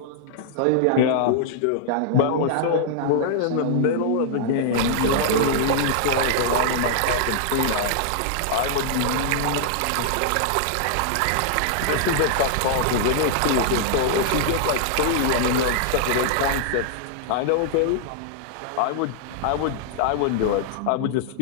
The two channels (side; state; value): both; different; correlation -0.01